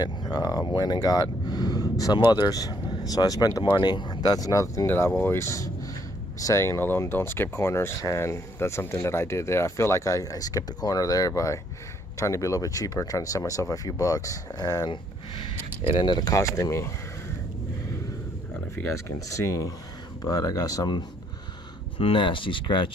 Went and got some others. So I spent the money. That's another thing that I've always saying, you know, don't skip corners, and that's something that I did there. I feel like I skipped the corner there by trying to be a little bit cheaper, trying to save myself a few bucks, and it ended up costing me. I don't know if you guys can see, but I got some nasty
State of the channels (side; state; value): both; normal; correlation 0.68